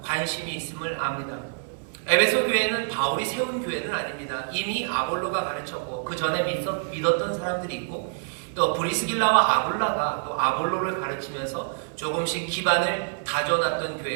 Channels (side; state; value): left; silent; digital silence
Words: 관심이 있음을 압니다. 에베소 교회는 바울이 세운 교회는 아닙니다. 이미 아볼로가 가르쳤고 그 전에 믿었던 사람들이 있고, 또 브리스길라와 아굴라가 또 아볼로를 가르치면서 조금씩 기반을 다져놨던